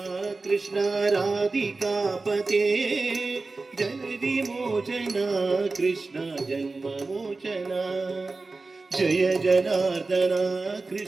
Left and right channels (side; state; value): left; quieter; 3.7 dB